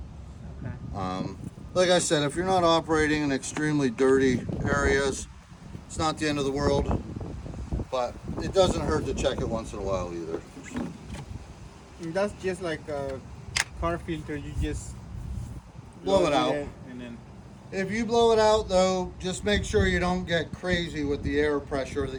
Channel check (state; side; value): identical; both; correlation 1.00